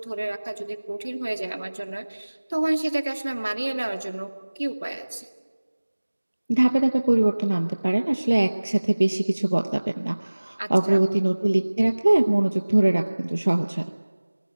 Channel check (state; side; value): inverted; both; correlation -1.00